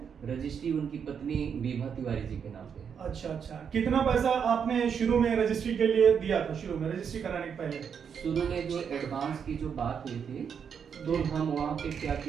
रजिस्ट्री उनकी पत्नी विभा तिवारी जी के नाम पे है। अच्छा अच्छा। कितना पैसा आपने शुरू में रजिस्ट्री के लिए दिया था? शुरू में रजिस्ट्री कराने के पहले शुरू में जो एडवांस की जो बात हुई थी, तो हम वहाँ पे क्या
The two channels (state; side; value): quieter; left; 7.2 dB